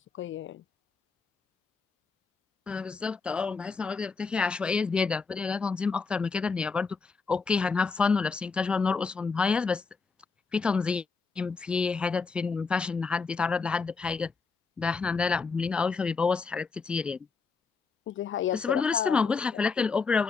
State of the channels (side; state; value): right; quieter; 4.9 dB